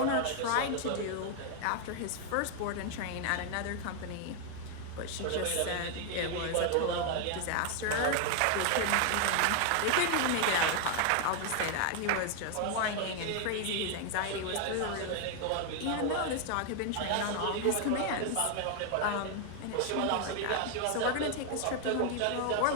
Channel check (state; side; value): different; both; correlation 0.00